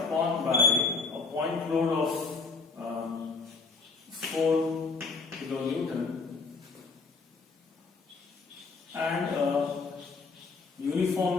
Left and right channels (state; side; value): quieter; right; 4.3 dB